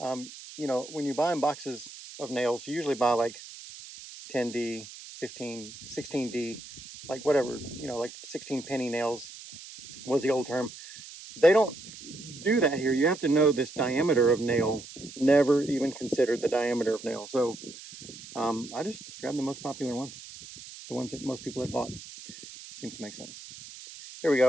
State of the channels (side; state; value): right; noise; hiss, 15 dB below the sound